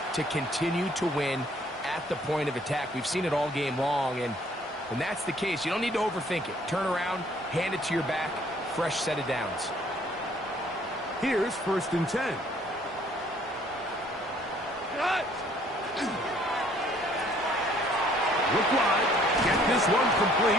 to continue to win at the point of attack. We've seen it all game long, and when that's the case, you don't need to overthink it. Turn around, hand it to your back, fresh set of downs. Here's 1st and 10. Look wide, get this one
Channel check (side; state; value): both; normal; correlation 0.61